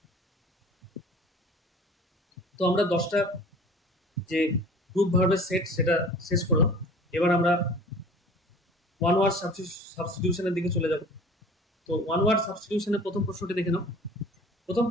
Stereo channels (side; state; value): both; normal; correlation 0.45